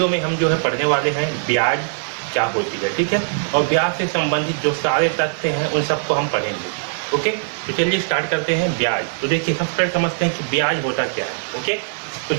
में हम जो है पढ़ने वाले हैं ब्याज क्या होती है, ठीक है। और ब्याज से संबंधित जो सारे तथ्य हैं उन सबको हम पढ़ेंगे। ओके, तो चलिए स्टार्ट करते हैं। ब्याज, तो देखिए सबसे पहले समझते हैं कि ब्याज होता क्या है। ओके, तो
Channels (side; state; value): left; silent; digital silence